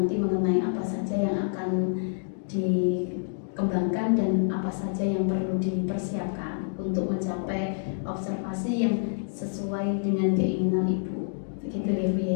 mengenai apa saja yang akan dikembangkan dan apa saja yang perlu dipersiapkan untuk mencapai observasi yang sesuai dengan keinginan Ibu. Begitu ya Bu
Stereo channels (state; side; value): silent; right; digital silence